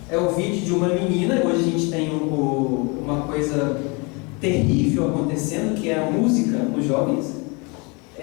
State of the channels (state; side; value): quieter; right; 29.9 dB